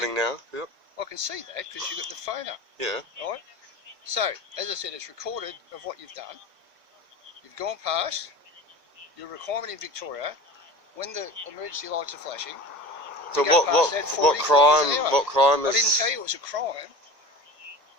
now. Yep. I can see that because you've got the phone up. Yeah. Right? So, as I said, it's recorded of what you've done. You've gone past your requirement in Victoria when the emergency lights are flashing. So what crime I is... didn't tell you it was a crime.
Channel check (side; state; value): left; late; 1.8 ms